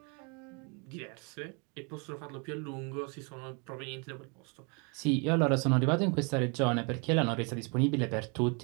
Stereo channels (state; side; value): quieter; left; 33.8 dB